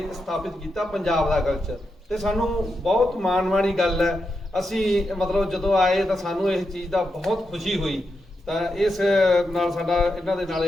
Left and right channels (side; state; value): both; normal; correlation 0.86